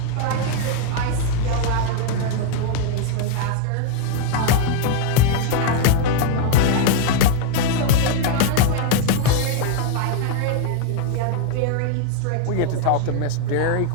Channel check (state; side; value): different; both; correlation 0.00